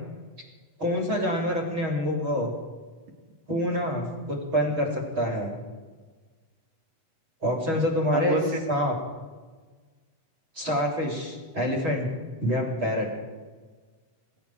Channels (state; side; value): late; left; 8.1 ms